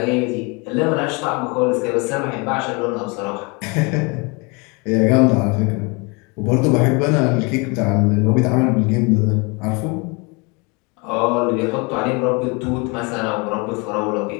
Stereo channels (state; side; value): quieter; right; 29.8 dB